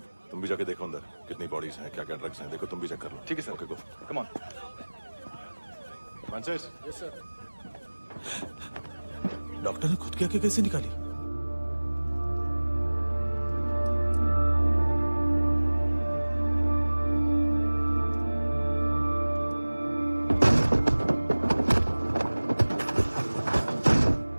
तुम भी जाके देखो अंदर कितनी बॉडीज हैं, क्या क्या ड्रग्स हैं, देखो तुम भी चेक कर लो। ठीक है sir. Okay go. Come on. Francis. Yes sir. Doctor ने खुद की आंखें कैसे निकाली?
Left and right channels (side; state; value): both; inverted; correlation -1.00